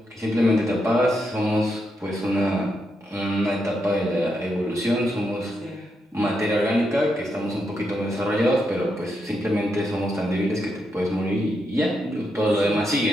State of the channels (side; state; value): both; normal; correlation 0.82